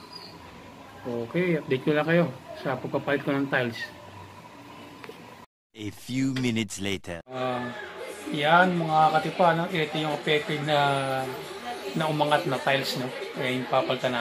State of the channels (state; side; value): identical; both; correlation 1.00